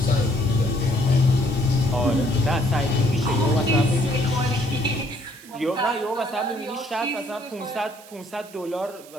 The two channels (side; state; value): right; noise; hiss, 21 dB below the sound